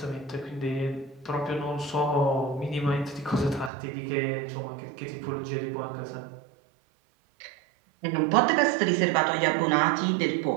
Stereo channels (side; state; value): left; drops out; at 3.7 s